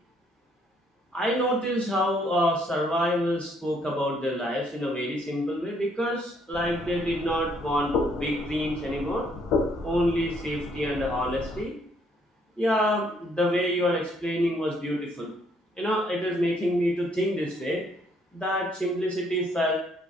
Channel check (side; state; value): both; normal; correlation 0.67